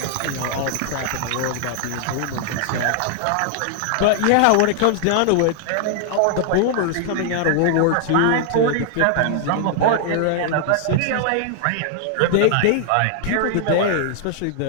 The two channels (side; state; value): both; different; correlation 0.00